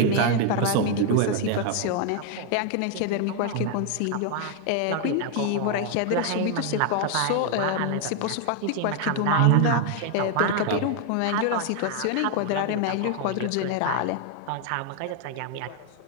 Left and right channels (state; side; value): different; both; correlation 0.00